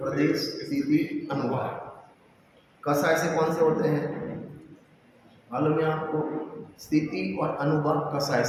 स्थिति, अनुभाव। कषाय से कौन से होते हैं मालूम है आपको? स्थिति और अनुभाव कषाय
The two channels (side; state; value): both; identical; correlation 1.00